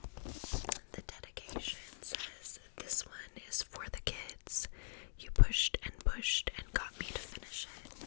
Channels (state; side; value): silent; right; digital silence